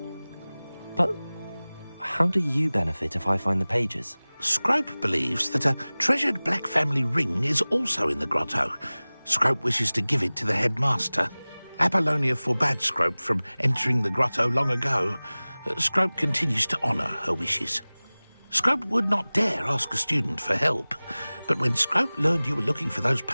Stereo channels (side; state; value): both; inverted; correlation -0.99